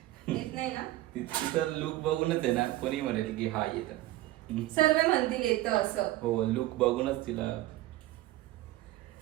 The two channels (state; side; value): quieter; left; 16.4 dB